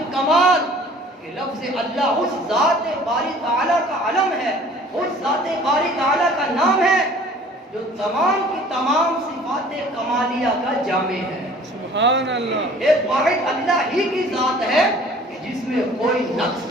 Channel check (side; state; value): both; normal; correlation 0.50